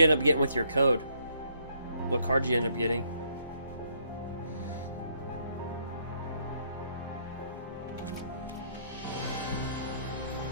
end up getting with your code? What card did you end up getting?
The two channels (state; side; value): inverted; both; correlation -0.69